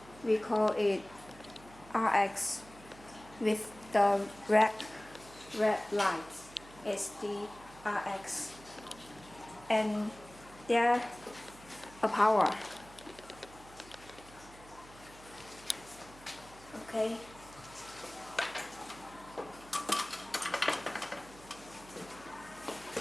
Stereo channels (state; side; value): noise; right; hum, 21 dB below the sound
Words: we call it RX with the red light is the RX, and there a power. Okay.